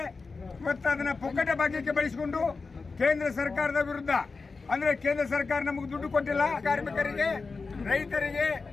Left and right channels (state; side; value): quieter; right; 4.3 dB